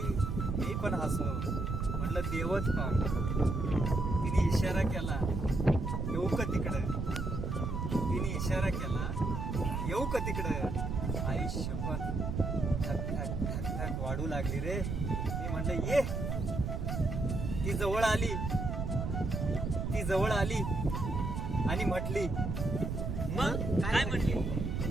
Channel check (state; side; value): noise; right; rumble, 2 dB below the sound